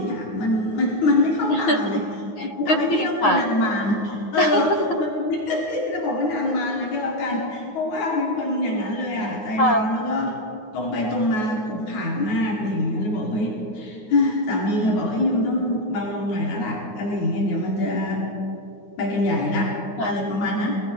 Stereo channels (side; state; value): right; late; 9.4 ms